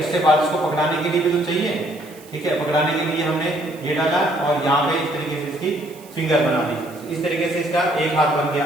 बाद इसको पकड़ाने के लिए भी तो चाहिए, ठीक है। पकड़ाने के लिए हमने ये डाला और यहाँ पे इस तरीके से इसकी फिंगर बना दी। इस तरीके से इसका एक हाथ बन गया।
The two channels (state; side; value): noise; right; hiss, 23 dB below the sound